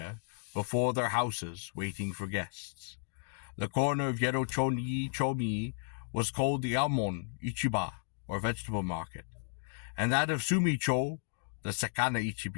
before their houses waiting for guests. The corner of Yedo-cho-mi was called the Almon Ichiba, or vegetable market, and that of Sumi-cho, the Sakana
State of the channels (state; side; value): silent; right; digital silence